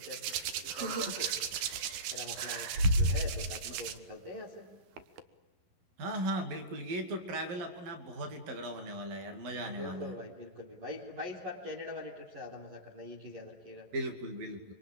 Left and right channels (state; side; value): late; left; 11 ms